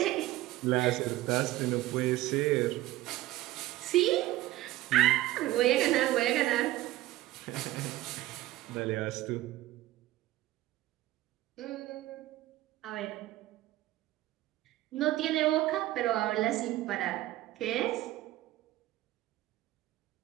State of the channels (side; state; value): left; quieter; 16.1 dB